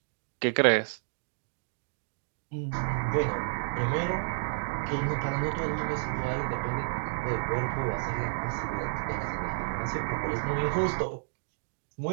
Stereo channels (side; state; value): left; silent; digital silence